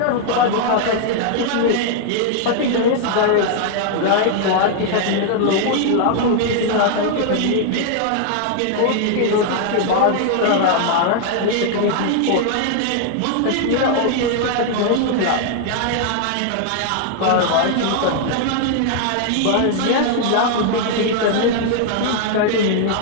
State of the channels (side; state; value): both; different; correlation 0.00